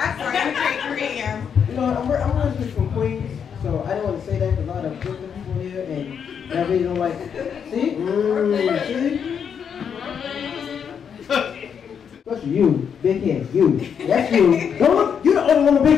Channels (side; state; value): right; quieter; 7.4 dB